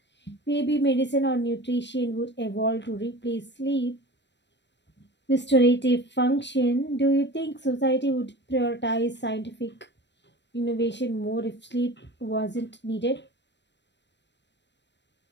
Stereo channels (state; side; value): late; right; 0.51 ms